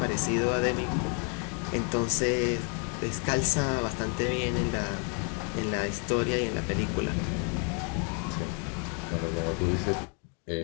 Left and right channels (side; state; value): right; quieter; 38.4 dB